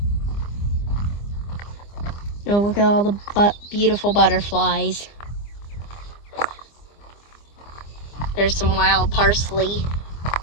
Oh, look at all the beautiful butterflies. There's some wild parsley.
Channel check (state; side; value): late; right; 25 ms